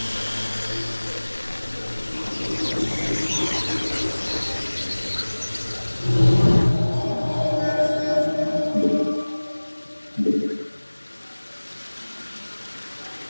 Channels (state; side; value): inverted; both; correlation -1.00